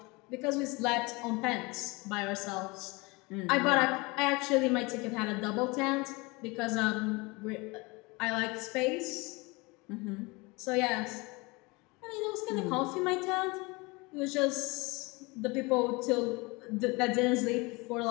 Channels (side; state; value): right; quieter; 25.7 dB